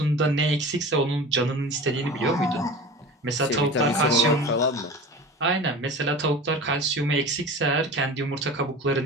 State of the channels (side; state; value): both; normal; correlation 0.35